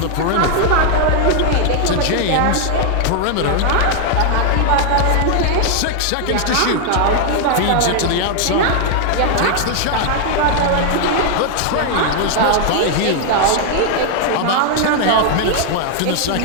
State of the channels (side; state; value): both; different; correlation 0.00